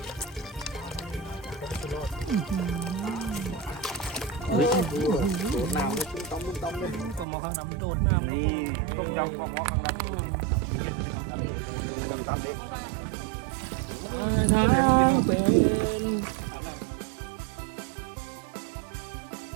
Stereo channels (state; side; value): drops out; left; at 7.2 s